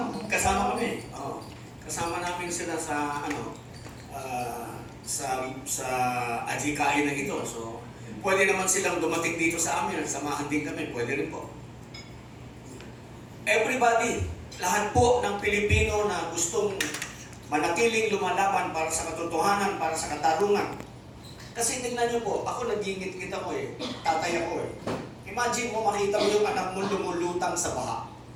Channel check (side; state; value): both; identical; correlation 1.00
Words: kasama kami. Kasama namin sila sa sa adhikain na ito. So, pwede naman silang dumating dito sa amin, samahan din kami, pwede rin po. Everybody, lahat po ng Pilipino na gustong manatiling lumalaban para sa katotohanan, para sa katarungan. Kasi tingnan niyo po, ako nagingit-ngit ako tatay ako Imagine mo makita mo yung anak mo lumulutang sa baha.